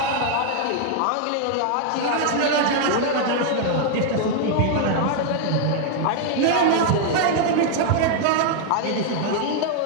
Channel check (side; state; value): both; different; correlation 0.00